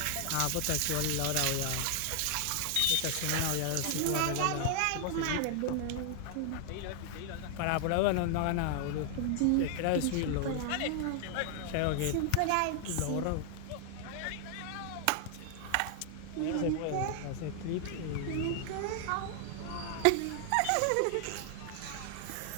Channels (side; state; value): both; different; correlation 0.00